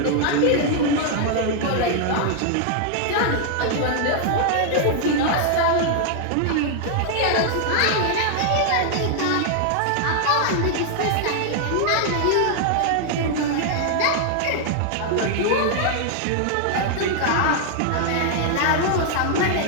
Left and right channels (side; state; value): both; different; correlation 0.00